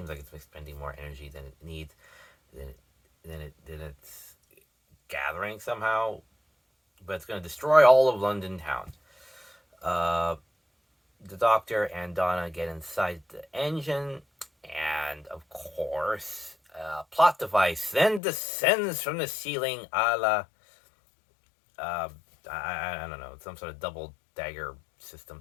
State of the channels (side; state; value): right; drops out; at 18.2 s